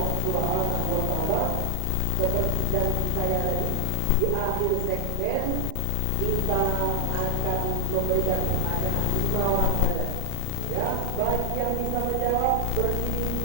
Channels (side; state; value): both; different; correlation 0.00